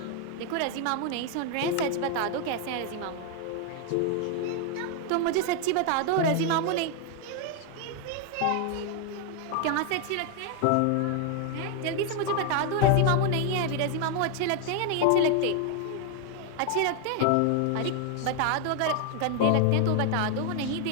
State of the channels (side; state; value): both; different; correlation 0.00